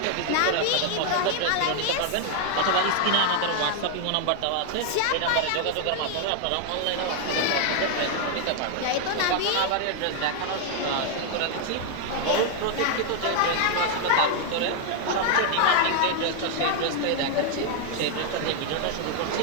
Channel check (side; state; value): both; different; correlation 0.00